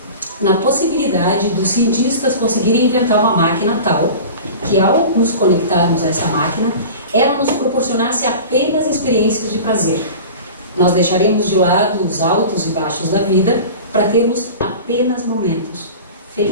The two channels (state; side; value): inverted; both; correlation -0.36